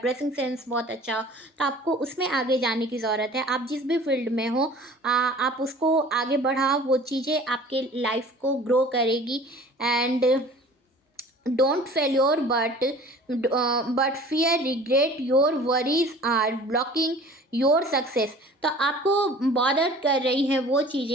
सेंस बहुत अच्छा हो, तो आपको उसमें आगे जाने की ज़रूरत है। आप जिस भी फील्ड में हो आप उसको आगे बढ़ाओ, वो चीज़ें आपके लाइफ को ग्रो करेगी। And don't failure but fear regret your worries are blocking your success. तो आपको बॉदर कर रही हैं वो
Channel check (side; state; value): both; normal; correlation 0.46